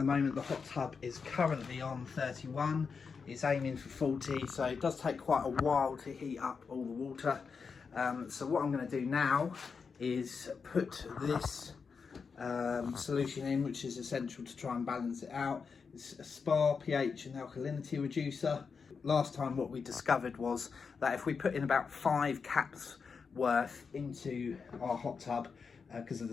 moment the hot tub is currently on 31, it's aiming for 40, so it does take quite a while to heat up all the water. So what I'm going to do now is put this solution in, which is essential to try and balance it out. It's a spa pH and alkalinity reducer. Last time what we discovered was that if we put in about 5 caps worth into our hot tub, because of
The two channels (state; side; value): quieter; right; 5.5 dB